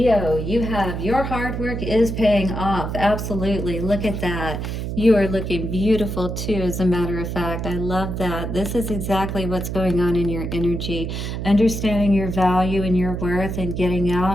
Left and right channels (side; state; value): right; noise; hum, 4 dB below the sound